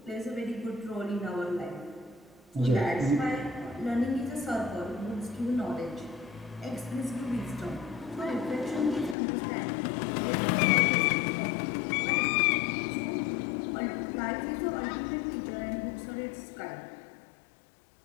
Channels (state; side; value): drops out; right; at 9.2 s